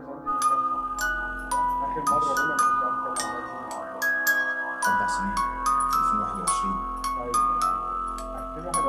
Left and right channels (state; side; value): identical; both; correlation 1.00